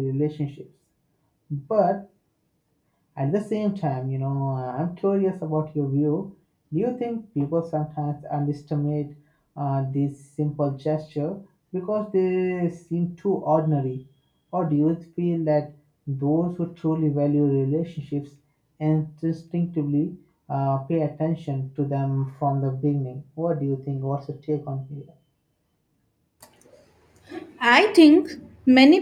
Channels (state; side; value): identical; both; correlation 1.00